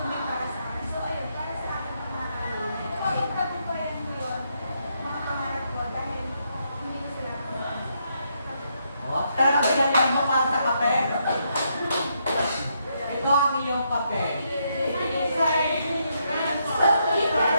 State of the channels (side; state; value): both; inverted; correlation -0.77